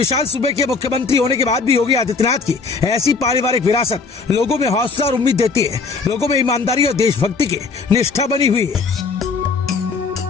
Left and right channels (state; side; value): quieter; right; 4.6 dB